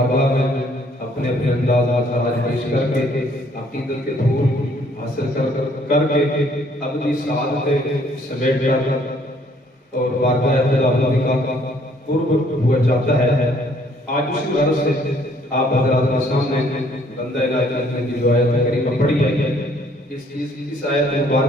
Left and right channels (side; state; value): both; normal; correlation 0.63